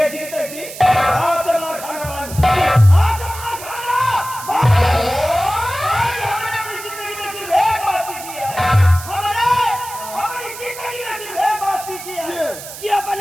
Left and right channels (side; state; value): right; noise; hiss, 12 dB below the sound